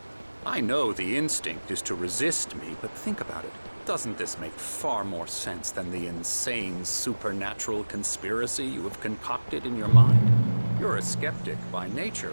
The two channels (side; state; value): both; inverted; correlation -1.00